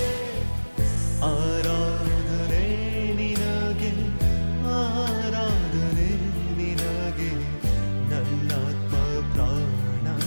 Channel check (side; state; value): both; inverted; correlation -1.00